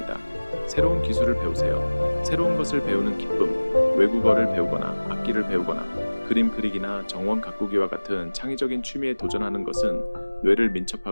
새로운 기술을 배우세요. 새로운 것을 배우는 기쁨, 외국어를 배우거나 악기를 배우거나 그림 그리기나 정원 가꾸기와 같은 창의적인 취미에 도전하는 것은 뇌를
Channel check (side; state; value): both; inverted; correlation -1.00